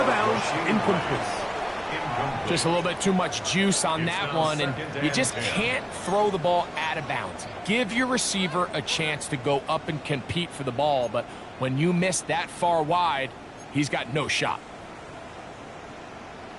of bounds, incomplete. Just a little bit too much juice on that one, and you just can't throw the ball out of bounds. Give your receiver a chance to go up and compete for the ball, but when you miss that far wide, he's got no shot.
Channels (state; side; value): identical; both; correlation 1.00